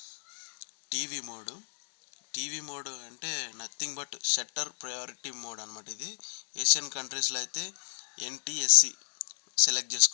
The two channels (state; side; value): silent; right; digital silence